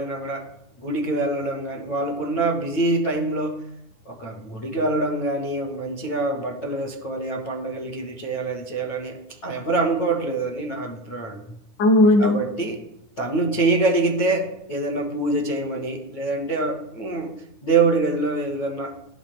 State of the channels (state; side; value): late; right; 9.7 ms